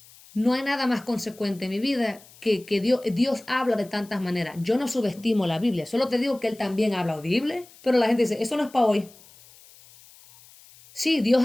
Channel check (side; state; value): left; noise; hiss, 24 dB below the sound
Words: No hay nada más consecuente en mi vida que Dios habla de tantas maneras. Yo no subestimo la Biblia, solo te digo que Él también habla audible, pero la gente dice, eso no es para hoy. Sí, Dios